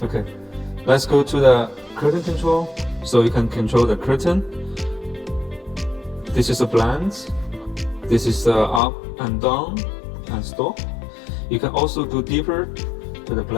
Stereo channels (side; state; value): right; drops out; at 8.8 s